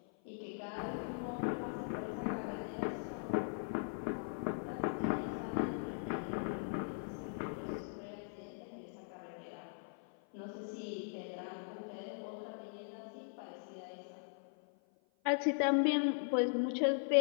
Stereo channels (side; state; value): right; silent; 51 dB below the other